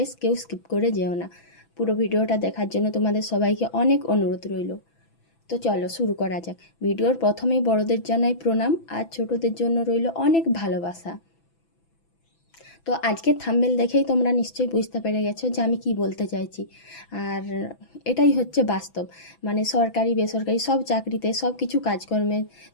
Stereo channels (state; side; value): late; right; 6.0 ms